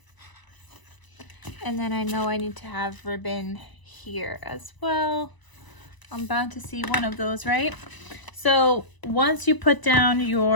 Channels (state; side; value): late; right; 1.0 ms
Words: and then I know I need to have ribbon here as well. I'm bound to see one of those, right? So once you put down